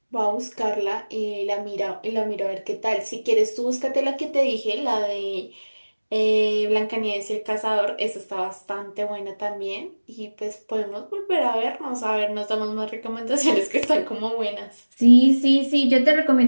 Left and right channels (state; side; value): inverted; both; correlation -1.00